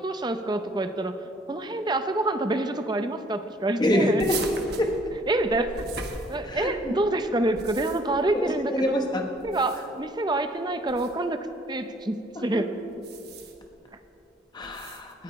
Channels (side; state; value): both; normal; correlation 0.60